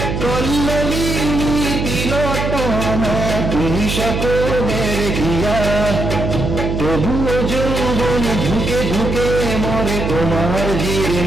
কল্লোলিনী তিলোত্তমা তুমি সকলের হিয়া। তবুও যৌবন ঝুঁকে ঝুঁকে মরে তোমার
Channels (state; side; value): noise; right; hum, 2 dB below the sound